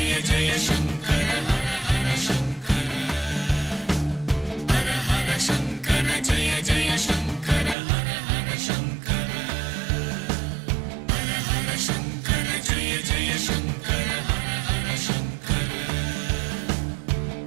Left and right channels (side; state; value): left; drops out; at 7.8 s